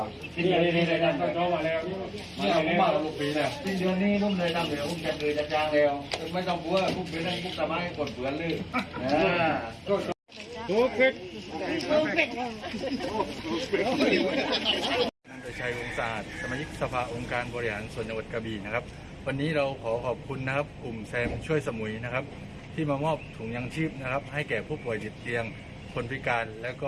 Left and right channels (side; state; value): both; identical; correlation 1.00